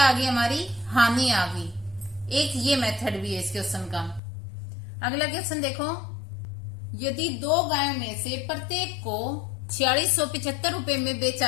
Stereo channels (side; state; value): right; drops out; at 4.2 s